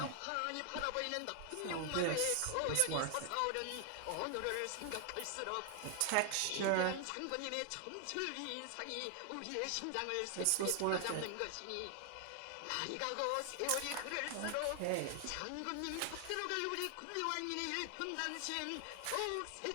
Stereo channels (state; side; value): different; both; correlation 0.00